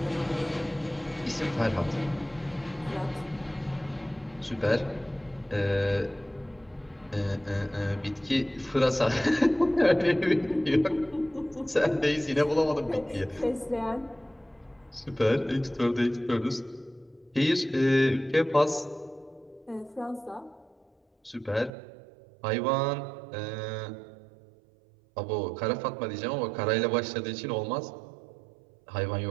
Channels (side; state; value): left; drops out; at 21.7 s